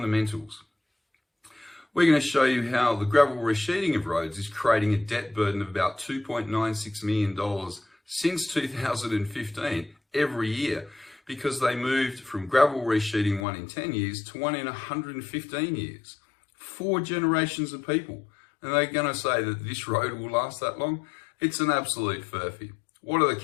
We're going to show you how the gravel resheeting of roads is creating a debt burden of about $2.96 million since 2015 every year, because they moved from gravel resheeting 1 in 10 years to 1 in 115 years. 4 generations of people. And they're going to say that this road will last that long? It's an absolute furphy. What are the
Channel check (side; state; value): right; drops out; at 13.5 s